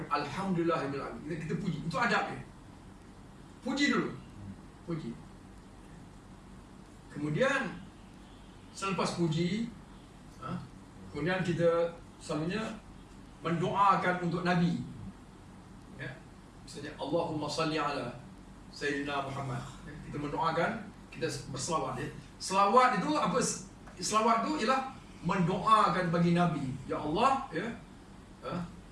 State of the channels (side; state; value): both; identical; correlation 1.00